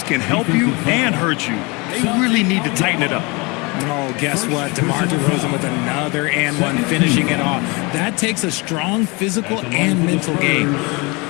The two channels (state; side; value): quieter; right; 27.3 dB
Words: can help you and hurt you. They really need to tighten it up. Oh, guess what? DeMar DeRozan with another and one, finishing it off. That takes a strong physical and mental game.